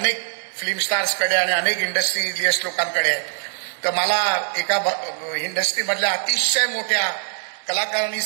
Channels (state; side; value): silent; left; digital silence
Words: फिल्म स्टार्सकडे आणि अनेक इंडस्ट्रियलिस्ट लोकांकडे आहे. तर मला एका इंडस्ट्रीमधल्या अतिशय मोठ्या कलाकारांनी